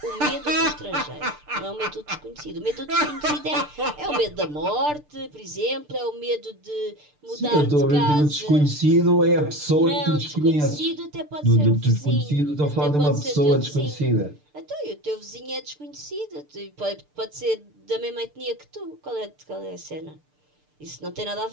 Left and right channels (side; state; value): left; late; 6.7 ms